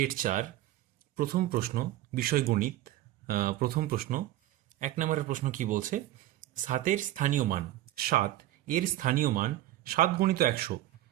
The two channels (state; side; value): quieter; left; 14.6 dB